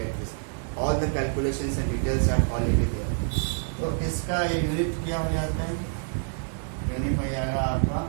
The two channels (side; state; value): left; silent; 60 dB below the other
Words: this. All the calculations and details are already there. तो इसका unit क्या हो जाता है? Unit हो जाएगा आपका